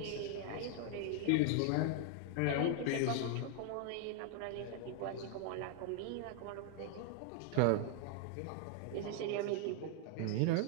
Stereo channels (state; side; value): different; both; correlation 0.00